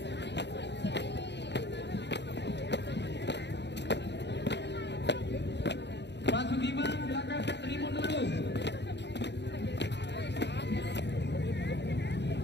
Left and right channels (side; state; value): right; late; 0.50 ms